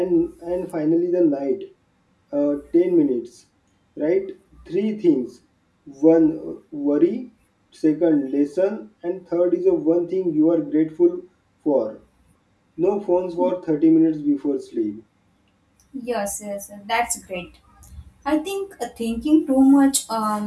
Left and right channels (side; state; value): both; identical; correlation 1.00